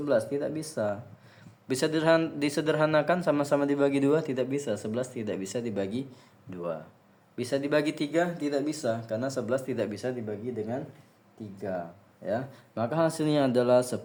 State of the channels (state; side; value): identical; both; correlation 1.00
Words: Tidak bisa. Bisa disederhanakan sama-sama dibagi 2? Tidak bisa. 11 tidak bisa dibagi 2. Bisa dibagi 3? Tidak bisa, karena 11 tidak bisa dibagi dengan 3 ya. Maka hasilnya adalah